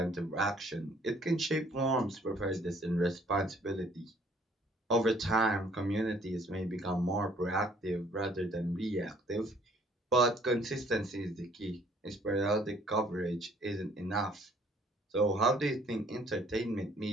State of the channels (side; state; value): both; normal; correlation 0.60